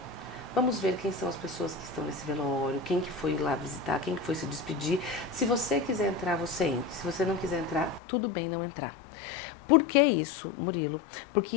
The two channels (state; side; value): drops out; right; at 8.0 s